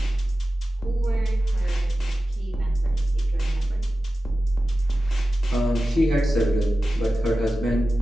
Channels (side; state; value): both; normal; correlation 0.94